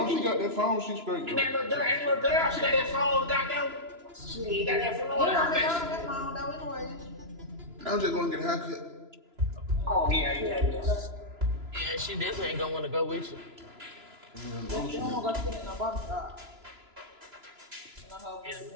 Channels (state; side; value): late; left; 2.9 ms